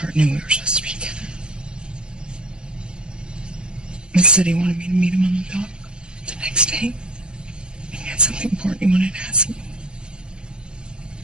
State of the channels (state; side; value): late; left; 0.047 ms